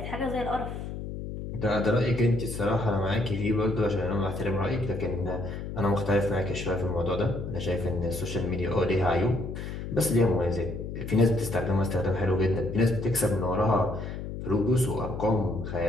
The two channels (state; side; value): noise; left; hum, 7 dB below the sound